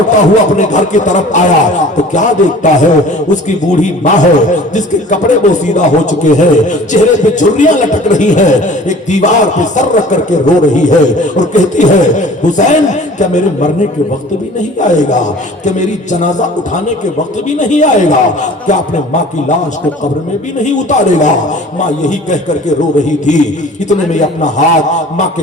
ہوا اپنے گھر کی طرف آیا تو کیا دیکھتا ہے؟ اس کی بوڑھی ماں ہے جس کے کپڑے بوسیدہ ہو چکے ہیں، چہرے پہ جھریاں لٹک رہی ہیں، ایک دیوار پہ سر رکھ کر کے رو رہی ہے اور کہتی ہے حسین کیا میرے مرنے کے وقت بھی نہیں آئے گا؟ کیا میری جنازہ اٹھانے کے وقت بھی نہیں آئے گا؟ کیا اپنے ماں کی لاش کو قبر میں بھی نہیں اتارے گا؟ ماں یہی کہہ کر کے رو رہی تھی۔ اتنے میں اپنا ہاتھ ماں کے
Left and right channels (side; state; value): both; normal; correlation 0.46